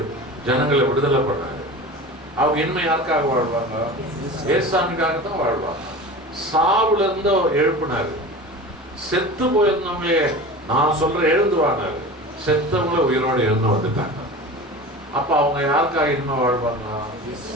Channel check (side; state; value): both; normal; correlation 0.34